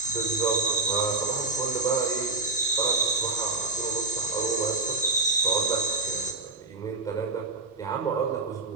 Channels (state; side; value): quieter; left; 3.6 dB